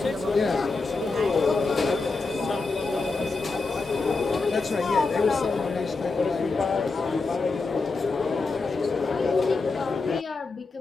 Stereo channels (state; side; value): quieter; right; 3.9 dB